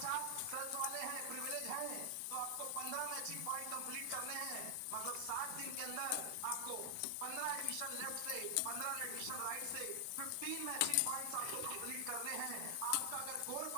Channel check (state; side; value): different; both; correlation 0.00